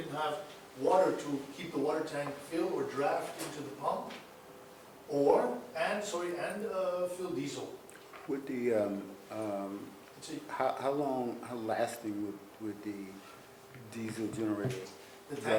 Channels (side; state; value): both; identical; correlation 1.00